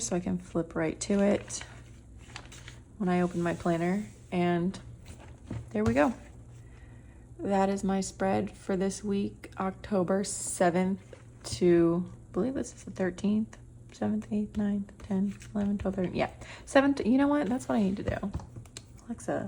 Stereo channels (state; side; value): identical; both; correlation 1.00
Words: so I can flip right to it when I open my planner, and there we go. That is my spread for this week, October 7th to, I believe this is the 13th, 7th, 8th, 9th, 10th, 11th, 12th, 13th, yeah. 7th, you know what, that's what I need to do.